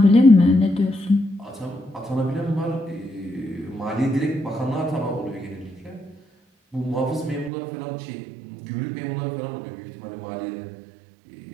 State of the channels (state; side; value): drops out; left; at 7.5 s